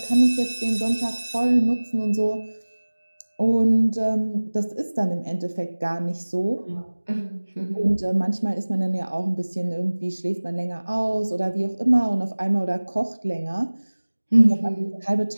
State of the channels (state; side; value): inverted; both; correlation -1.00